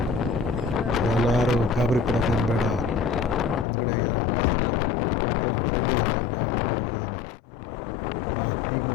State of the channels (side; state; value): right; drops out; at 3.7 s